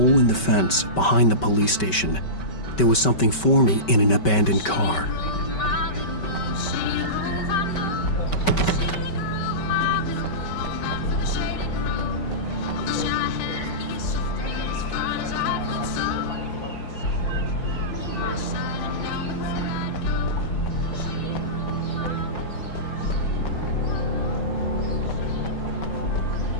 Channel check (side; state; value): right; late; 5.2 ms